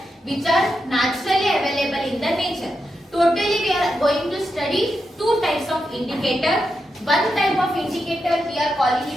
which are naturally available in the nature. Totally we are going to study 2 types of indicator. One type of indicator we are calling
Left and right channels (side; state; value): both; normal; correlation 0.86